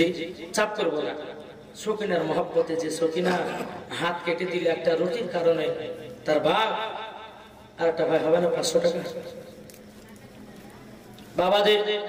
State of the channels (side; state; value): both; identical; correlation 1.00